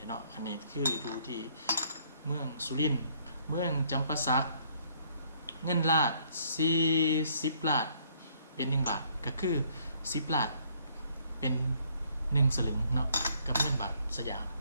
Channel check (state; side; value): inverted; both; correlation -0.65